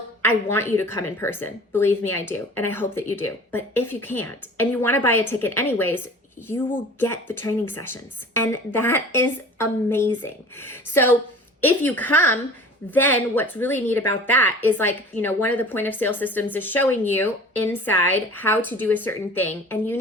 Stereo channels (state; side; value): normal; both; correlation 0.43